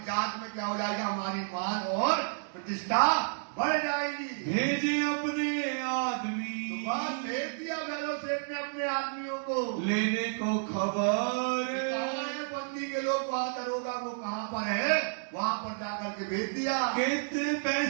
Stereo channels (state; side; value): silent; left; digital silence